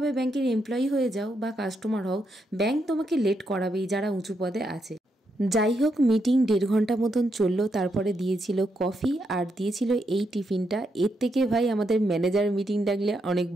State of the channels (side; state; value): both; normal; correlation 0.80